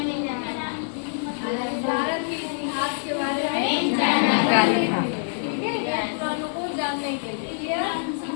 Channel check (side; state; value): right; silent; digital silence